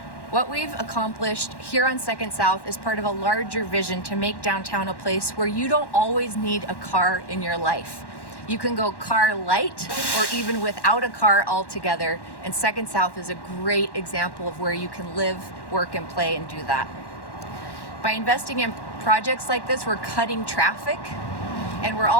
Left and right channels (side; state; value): right; late; 1.1 ms